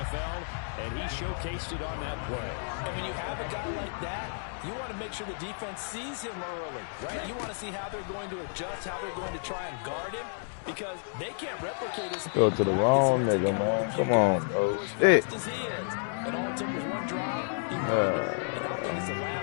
and he showcased it on that play. And when you have a guy like that, you want to make sure the defense sees him early, right? You want to see how they're going to adjust, how they're going to try and guard him, because they can't replicate his speed. Go to the wrong nigga, man. Come on, bro. Shit. And all it took was one drive. And I think it's the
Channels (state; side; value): silent; right; digital silence